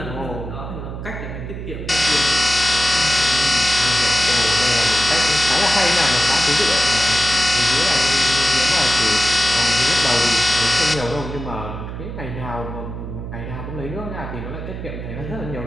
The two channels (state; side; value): noise; right; hum, 8 dB below the sound